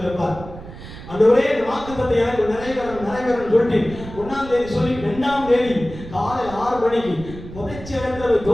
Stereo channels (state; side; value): noise; right; rumble, 14 dB below the sound